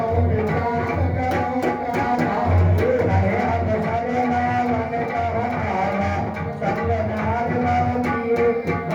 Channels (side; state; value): both; identical; correlation 1.00